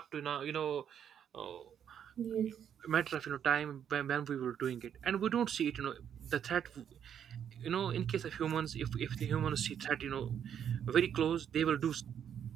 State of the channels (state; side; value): quieter; left; 8.8 dB